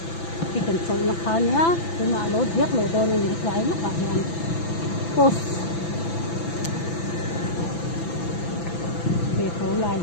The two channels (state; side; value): late; right; 6.0 ms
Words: thì cần phải mặc khá nhá thì mà lối viết lối đồ này những cái lúc bạn làm post về phố lại